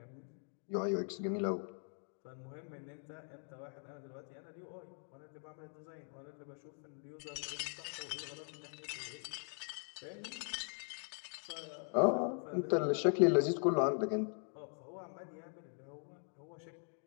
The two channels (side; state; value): right; silent; 51 dB below the other